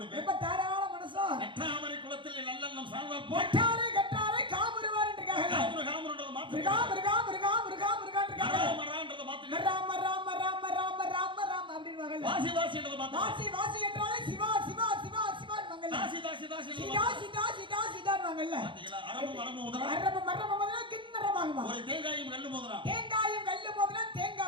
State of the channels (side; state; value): left; late; 0.24 ms